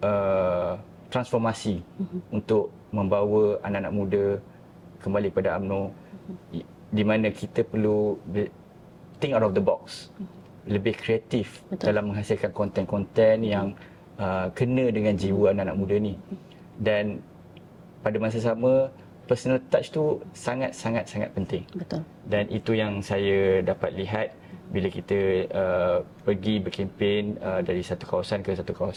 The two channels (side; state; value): both; identical; correlation 1.00